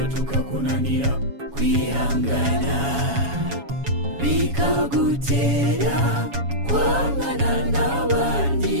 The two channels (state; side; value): late; left; 7.2 ms